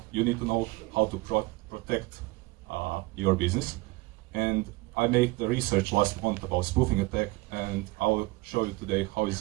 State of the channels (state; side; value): quieter; left; 22.6 dB